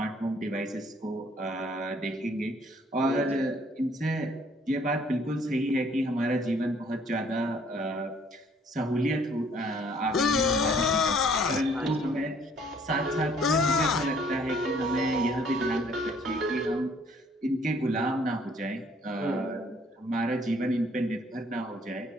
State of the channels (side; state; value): both; normal; correlation 0.61